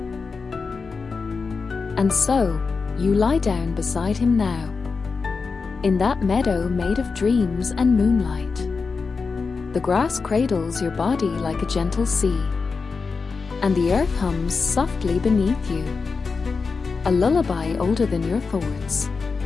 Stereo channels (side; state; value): right; quieter; 4.7 dB